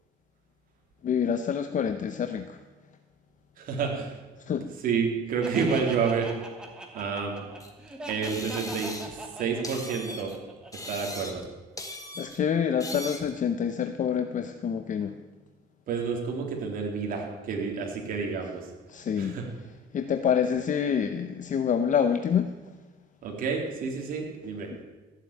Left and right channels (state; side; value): normal; both; correlation 0.37